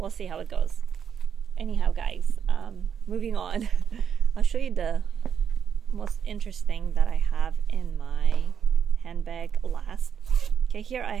see how it goes. Anyhow, guys, moving on. I'll show you the most interesting that I have in my handbag last. Okay, here I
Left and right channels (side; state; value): left; quieter; 7.8 dB